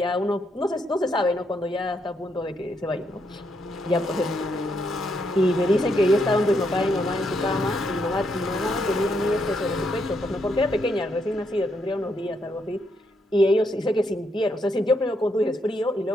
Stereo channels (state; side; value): normal; both; correlation 0.77